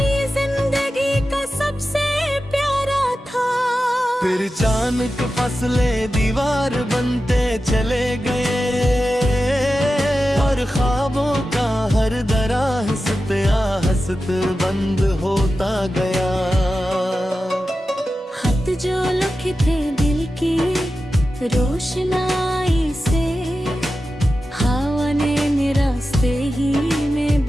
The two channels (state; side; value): normal; both; correlation 0.92